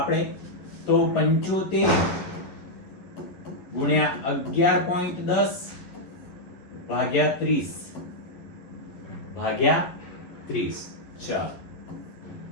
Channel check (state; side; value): late; right; 11 ms